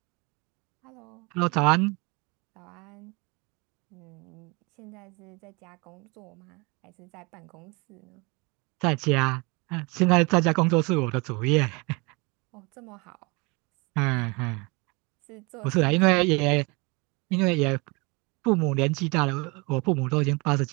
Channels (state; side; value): quieter; left; 28.0 dB